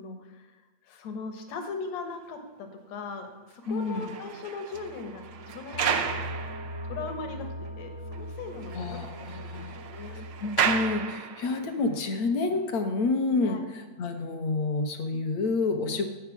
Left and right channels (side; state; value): right; late; 8.5 ms